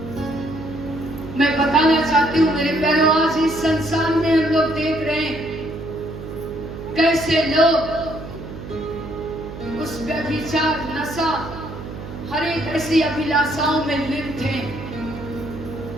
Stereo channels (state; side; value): noise; right; hum, 11 dB below the sound